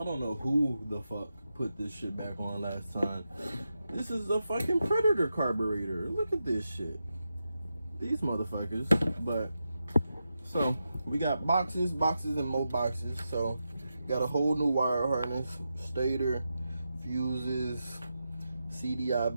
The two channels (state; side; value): inverted; both; correlation -0.88